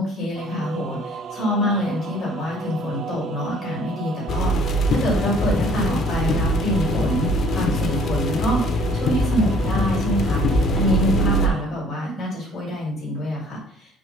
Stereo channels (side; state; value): both; normal; correlation 0.56